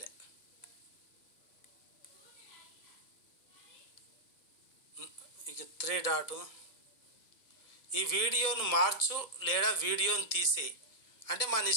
ఇక 3 డాట్ ఈ వీడియోను మార్చు లేదా వీడియోను తీసేయి అంటే మన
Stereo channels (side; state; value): right; late; 1.6 ms